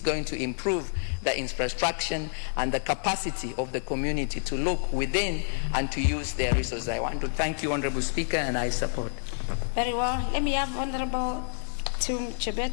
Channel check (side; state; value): right; silent; digital silence